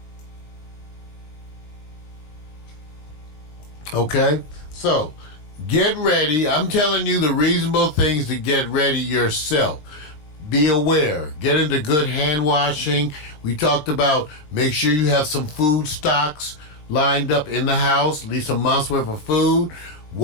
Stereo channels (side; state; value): right; late; 20 ms